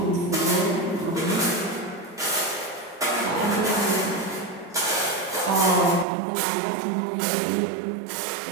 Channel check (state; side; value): drops out; left; at 6.1 s